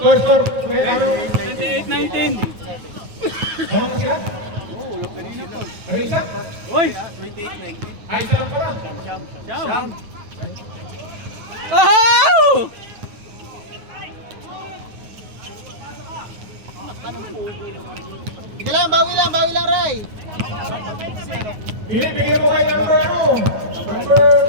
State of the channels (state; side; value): late; left; 9.4 ms